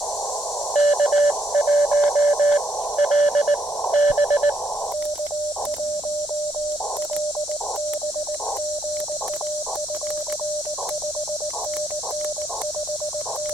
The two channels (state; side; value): normal; both; correlation 0.74